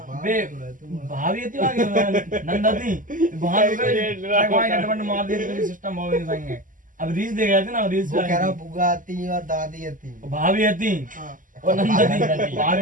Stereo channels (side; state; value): left; late; 0.38 ms